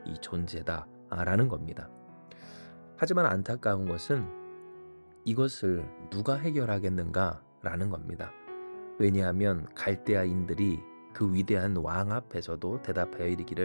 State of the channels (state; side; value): inverted; both; correlation -1.00